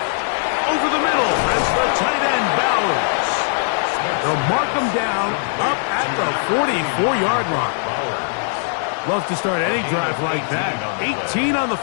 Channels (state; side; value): silent; right; digital silence